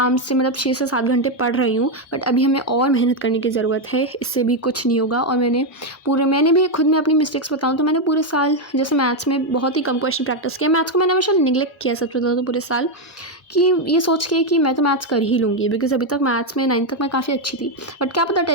से मतलब 6 से 7 घंटे पढ़ रही हूँ, बट अभी हमें और मेहनत करने की ज़रूरत है, इससे भी कुछ नहीं होगा। और मैंने भी खुद में अपनी मिस्टेक्स बताऊँ तो मैंने पूरे साल जैसे मैथ्स में बहुत ही कम क्वेश्चन प्रैक्टिस किया। मैथ्स को मैंने हमेशा निगलेक्ट किया सच बताऊँ तो पूरे साल, कि ये सोच के कि मैं तो मैथ्स कर ही लूँगी, बिकॉज अभी तक मैथ्स में 9th तक मैं काफ़ी अच्छी थी, बट क्या पता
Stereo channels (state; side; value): normal; both; correlation 0.05